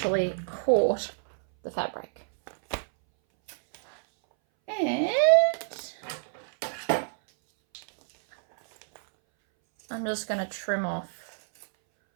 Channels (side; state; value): left; silent; 60 dB below the other